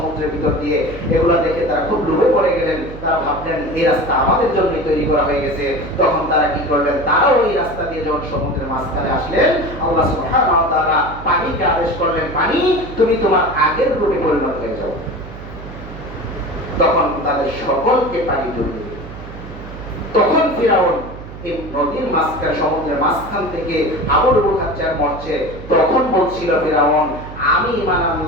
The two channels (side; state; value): right; noise; hum, 13 dB below the sound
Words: ভিতর দিয়ে, এগুলা দেখে তারা খুব লোভে পড়ে গেলেন। তারা ভাবলেন এই রাস্তা আমাদের জন্যই তৈরি করা হয়ে গেছে। তখন তারা কি করলেন, তারাও এই রাস্তা দিয়ে যখন সমুদ্রের মাঝখানে আসলেন, আল্লাহ সুবহানাহু ওয়া তাআলা পানিকে আদেশ করলেন, পানি তুমি তোমার আগের রূপে পরিণত হয়ে যাও। তখন তাদের সকলকে পানি ডুবিয়ে দিল। তখন ফিরাউন এই নদীর মাঝখানে, সমুদ্রের মাঝখান থেকে হাবুডুবু খাচ্ছে আর মরছে। তখন বলছিল ফিরাউন, আমি ঈমান